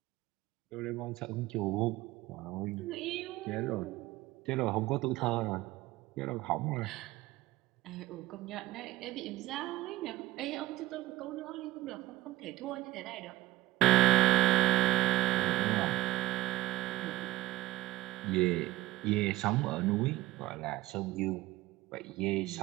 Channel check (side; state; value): left; quieter; 17.2 dB